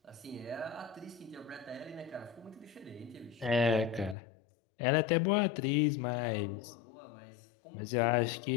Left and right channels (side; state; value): right; drops out; at 4.2 s